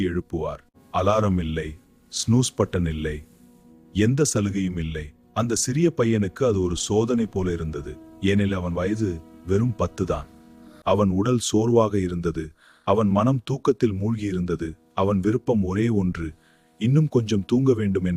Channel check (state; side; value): identical; both; correlation 1.00